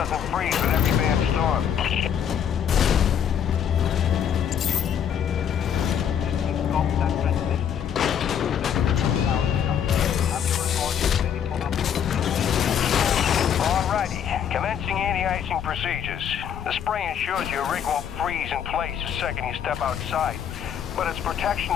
freeze with every bad storm. Alrighty, Commencing anti-icing procedures. The spray ensures your rig won't freeze in place the second you step outside, but its protection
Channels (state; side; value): quieter; right; 8.6 dB